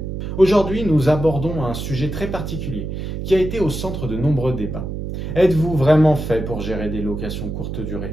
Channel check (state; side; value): noise; right; hum, 5 dB below the sound